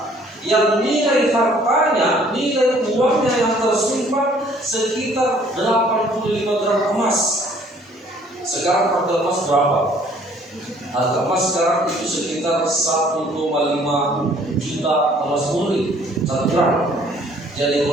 yang nilai hartanya, nilai uangnya yang tersimpan sekitar 85 gram emas. Sekarang harga emas berapa? Harga emas sekarang itu sekitar 1,5 juta emas murni 1 gram. Jadi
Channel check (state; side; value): normal; both; correlation 0.58